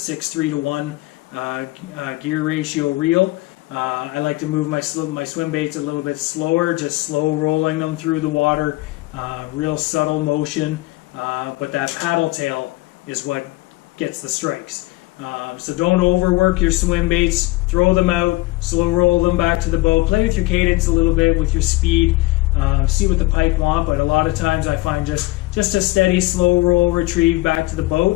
to 1 gear ratio reel. I like to move my swim baits a little bit slower, just slow rolling them through the water, real subtle motion. But that paddle tail is what gets the strikes. So don't overwork your swim baits. Throw them out, slow roll them back to the boat. Play with your cadence a little bit, with your speed. See what the pike want, but a lot of times I find just a steady, slow roll retrieve back to the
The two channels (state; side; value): quieter; right; 20.2 dB